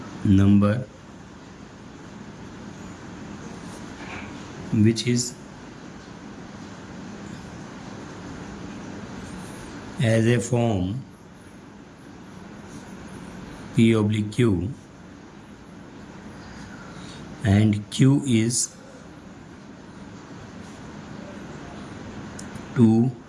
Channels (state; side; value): identical; both; correlation 1.00